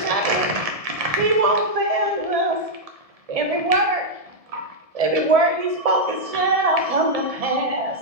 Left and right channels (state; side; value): late; left; 1.7 ms